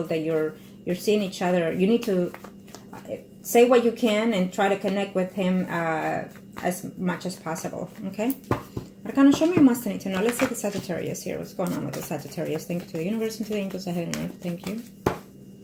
that you're seeing each other. You need to say what you can and try to connect with him as much as possible. Okay? Arcana, show me what must I need to know. Let's see the Sagittarius here. What's going on with the Sagittarius? Thank you to the universe and to the angels ahead and earth. Thank you.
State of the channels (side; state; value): both; identical; correlation 1.00